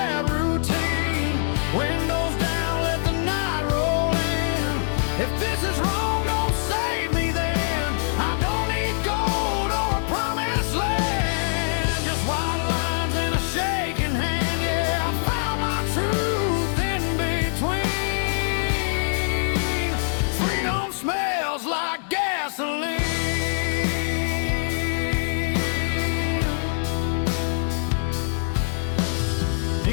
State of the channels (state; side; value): silent; right; digital silence